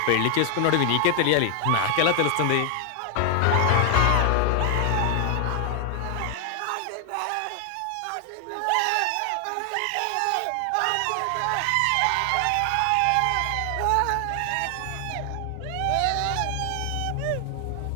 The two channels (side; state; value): both; different; correlation 0.00